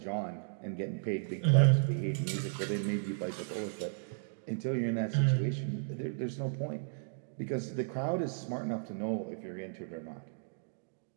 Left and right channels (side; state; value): left; silent; digital silence